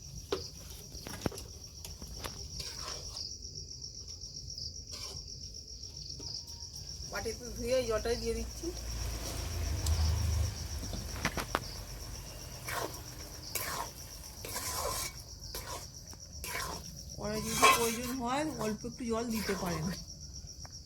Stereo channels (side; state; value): both; identical; correlation 1.00